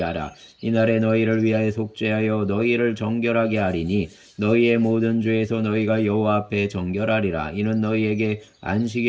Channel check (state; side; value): identical; both; correlation 1.00